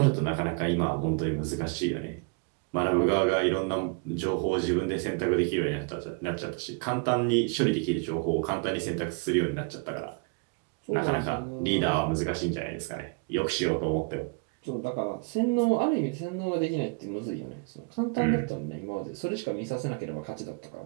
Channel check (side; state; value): left; quieter; 33.9 dB